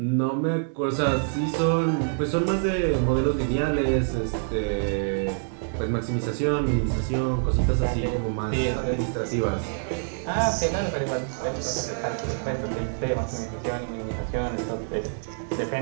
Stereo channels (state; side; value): silent; left; digital silence